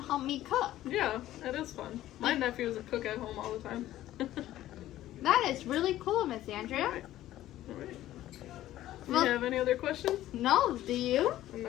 help me cook. Yeah, that is fun. My nephew is a cook at home all the time. That is really cool, Miss Andrea. All right. Do Well- you have any other questions? No, do you?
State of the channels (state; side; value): quieter; right; 14.0 dB